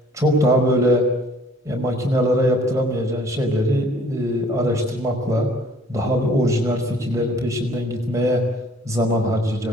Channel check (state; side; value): normal; both; correlation 0.56